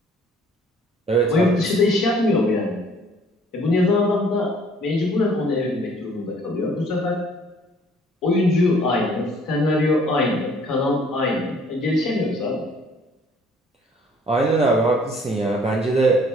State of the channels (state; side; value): normal; both; correlation 0.58